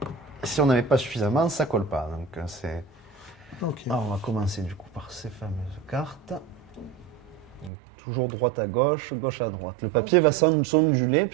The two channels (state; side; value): drops out; left; at 7.7 s